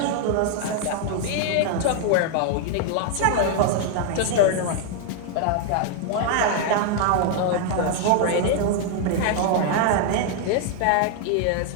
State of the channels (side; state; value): both; different; correlation 0.00